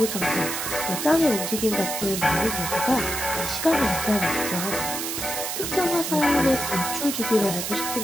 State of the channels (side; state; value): right; noise; hiss, 3 dB below the sound